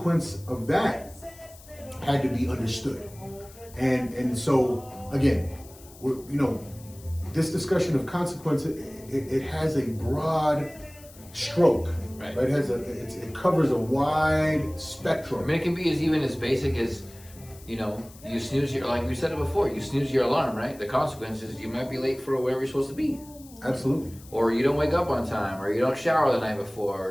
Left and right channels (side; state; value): left; noise; hiss, 22 dB below the sound